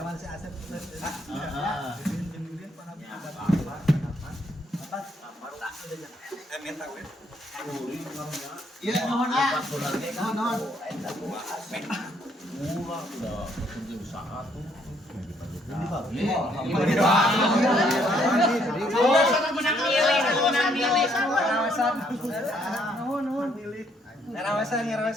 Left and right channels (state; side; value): normal; both; correlation 0.69